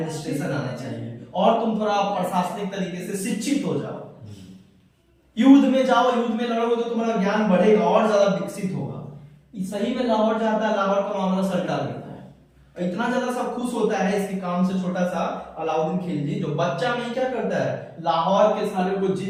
आना चाहिए और तुम थोड़ा प्रशासनिक तरीके से शिक्षित हो जाओ, युद्ध में जाओ, युद्ध में लड़ोगे तो तुम्हारा ज्ञान बढ़ेगा और ज्यादा विकसित होगा। सही में लाहौर जाता है, लाहौर का मामला सल्टा देता है। इतना ज्यादा सब खुश होता है इसके काम से छोटा सा अलाउद्दीन खिलजी, जो बच्चा में क्या करता है, लाहौर के सारे को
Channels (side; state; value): both; identical; correlation 1.00